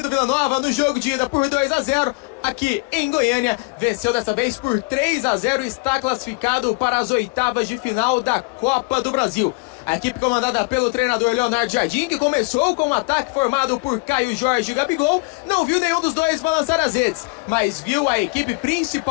Vila Nova no jogo de ida por 2-0 aqui em Goiânia. Venceu dessa vez por 3-0 e está classificado para as oitavas de final da Copa do Brasil. A equipe comandada pelo treinador Leonardo Jardim, que começou com um ataque formado por Caio Jorge e Gabigol, não viu nenhum dos dois balançar as redes, mas viu a equipe,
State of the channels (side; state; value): right; quieter; 29.4 dB